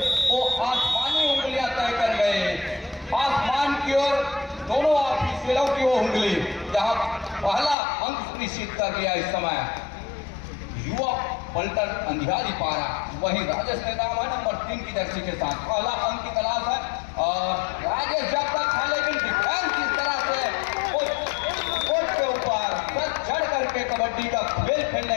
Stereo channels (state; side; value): drops out; right; at 7.8 s